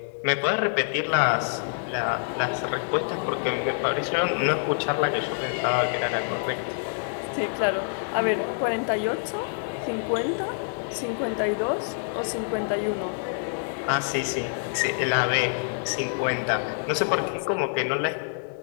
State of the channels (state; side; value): silent; right; digital silence